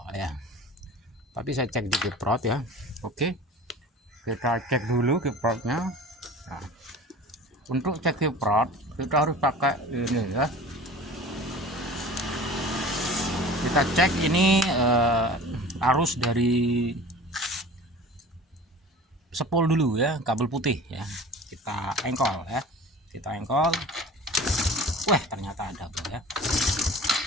ya. Tapi saya cek di kiprot ya. Oke, kita cek dulu kiprotnya. Nah, untuk cek kiprot kita harus pakai ini ya. Kita cek ini arus dari sepul dulu ya, kabel putih ya. Kita engkol ya. Wah, ternyata ada bro ya.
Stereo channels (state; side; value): normal; both; correlation 0.40